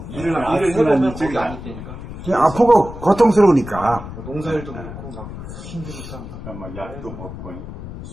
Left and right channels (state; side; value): noise; left; rumble, 11 dB below the sound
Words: 일을 해보면 거기 안 있다니까. 아프고 고통스러우니까. 농사일도 그렇고 막 힘드니까. 막 약도 먹고